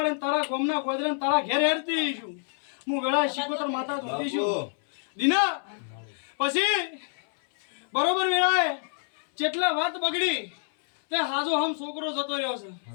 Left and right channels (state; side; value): silent; right; 60 dB below the other